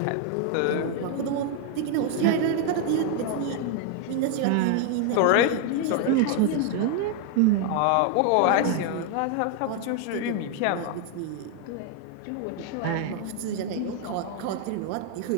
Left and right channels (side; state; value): both; different; correlation 0.00